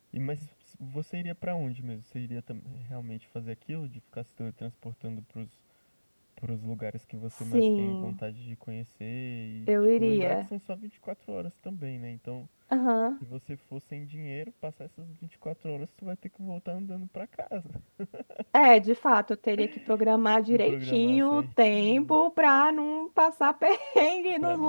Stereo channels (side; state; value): both; inverted; correlation -1.00